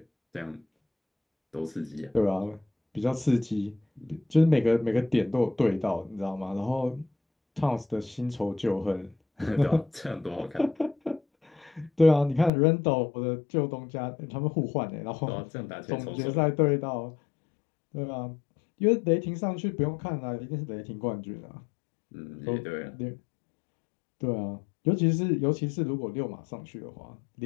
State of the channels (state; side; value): drops out; right; at 12.5 s